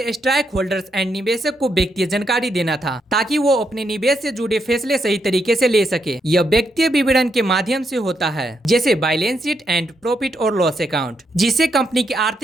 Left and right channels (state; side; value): normal; both; correlation 0.79